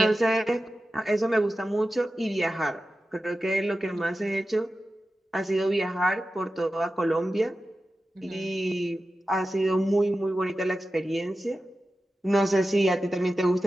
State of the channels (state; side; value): normal; both; correlation 0.93